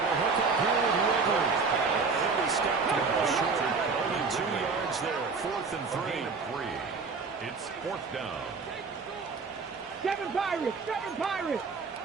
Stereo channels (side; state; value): left; quieter; 4.7 dB